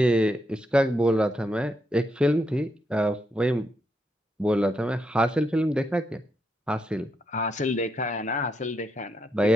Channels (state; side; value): normal; both; correlation 0.80